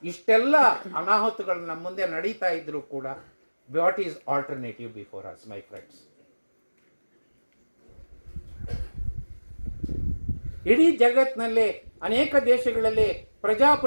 ಇಷ್ಟೆಲ್ಲ ಅನಾಹುತಗಳು ನಮ್ಮ ಮುಂದೆ ನಡೀತಾ ಇದ್ರೂ ಕೂಡ, what is alternative before us my friends? ಇಡೀ ಜಗತ್ತಿನಲ್ಲಿ ಅನೇಕ ದೇಶಗಳಲ್ಲಿ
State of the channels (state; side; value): inverted; both; correlation -1.00